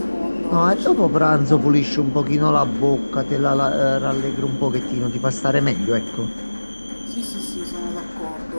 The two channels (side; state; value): both; inverted; correlation -1.00